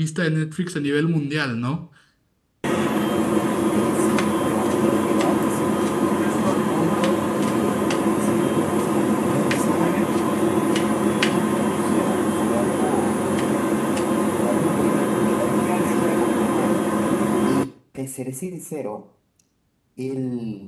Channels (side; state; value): both; identical; correlation 1.00